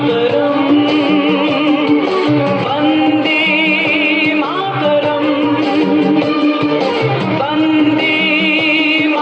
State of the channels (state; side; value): identical; both; correlation 1.00